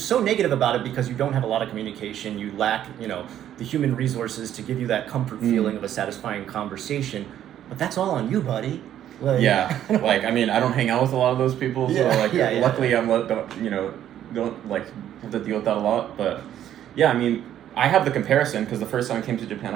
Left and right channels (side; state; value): left; quieter; 11.1 dB